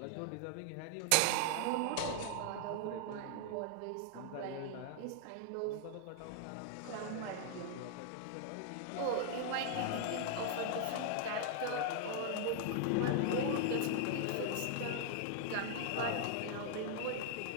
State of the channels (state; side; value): different; both; correlation 0.00